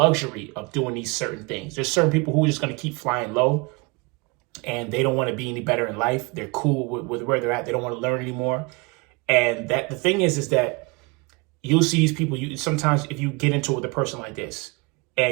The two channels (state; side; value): quieter; left; 28.3 dB